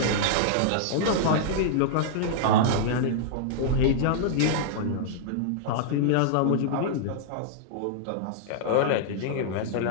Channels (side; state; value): both; different; correlation -0.02